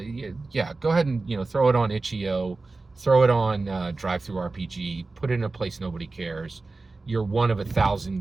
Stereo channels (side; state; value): left; quieter; 3.6 dB